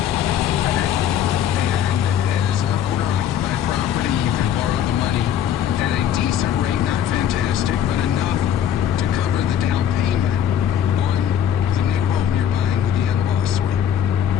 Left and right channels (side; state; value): right; quieter; 9.5 dB